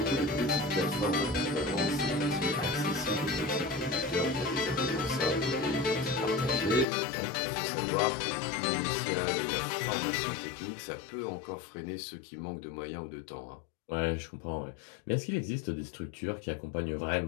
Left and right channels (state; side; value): drops out; right; at 6.9 s